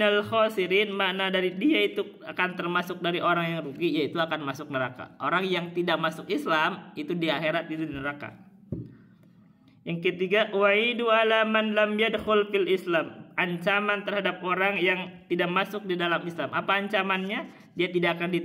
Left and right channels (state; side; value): identical; both; correlation 1.00